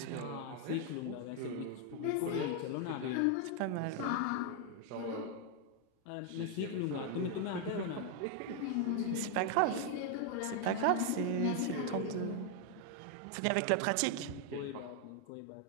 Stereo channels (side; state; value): both; different; correlation 0.00